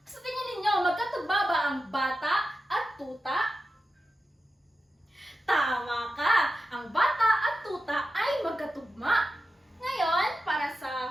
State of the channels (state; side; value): normal; both; correlation 0.91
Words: Sa tingin ninyo, magkatugma ba ang bata at tuta? Tama ka! Ang bata at tuta ay magkatugma. Ngayon, para